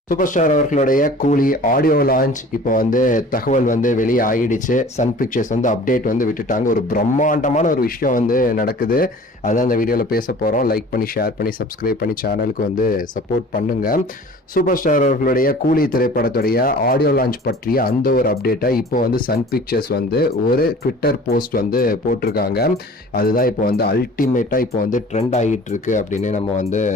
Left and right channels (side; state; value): both; normal; correlation 0.45